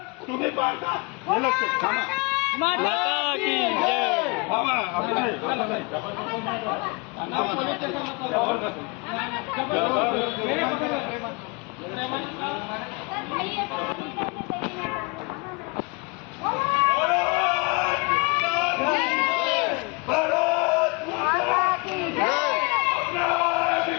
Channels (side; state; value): right; quieter; 29.7 dB